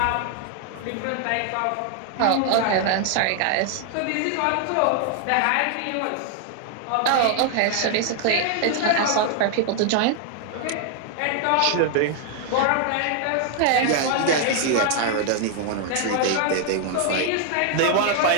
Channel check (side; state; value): both; different; correlation 0.00